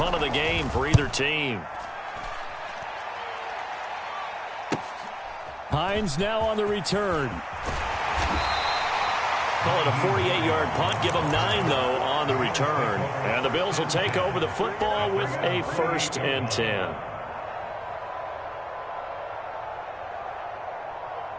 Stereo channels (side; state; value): both; identical; correlation 1.00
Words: of the game for either team. Hines now on the return. Call it a 48-yard punt. Give them 9, though, on the return. And the Bills will take over the football with a 1st and 10.